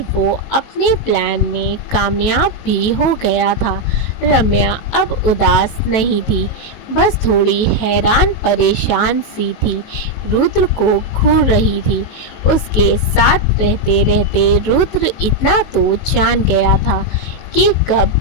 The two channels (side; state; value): right; late; 18 ms